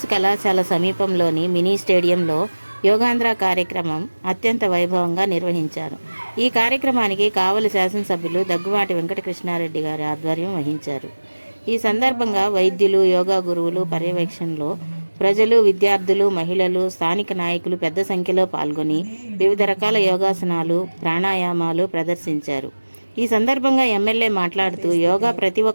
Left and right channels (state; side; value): inverted; both; correlation -1.00